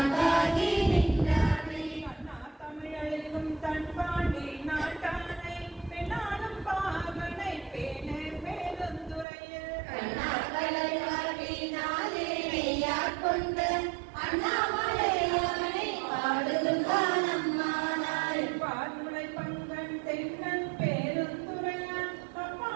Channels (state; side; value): drops out; left; at 9.2 s